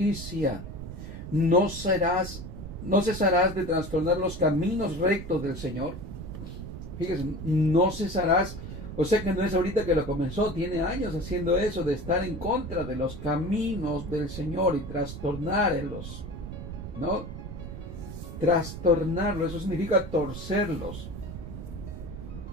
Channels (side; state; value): right; noise; rumble, 9 dB below the sound